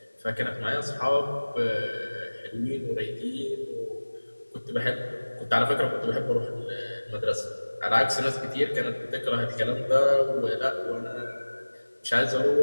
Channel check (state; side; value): inverted; both; correlation -1.00